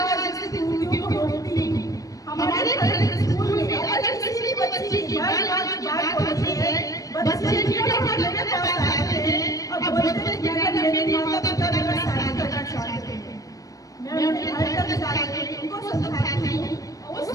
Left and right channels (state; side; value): late; right; 0.17 ms